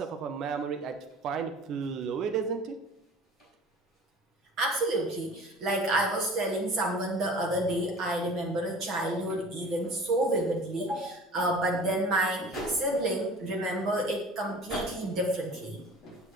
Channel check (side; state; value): both; normal; correlation 0.43